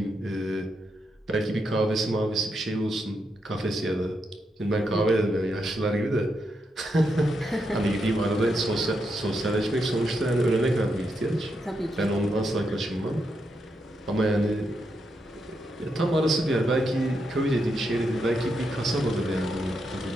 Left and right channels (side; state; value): both; normal; correlation 0.82